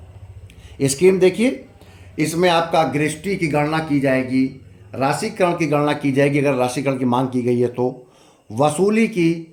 स्कीम देखिए, इसमें आपका गृहस्थी की गणना की जाएगी, राशिकरण की गणना की जाएगी अगर राशिकरण की मांग की गई है तो, वसूली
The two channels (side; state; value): both; identical; correlation 1.00